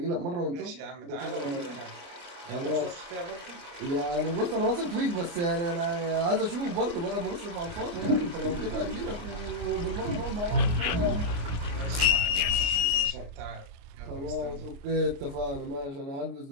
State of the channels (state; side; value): late; left; 29 ms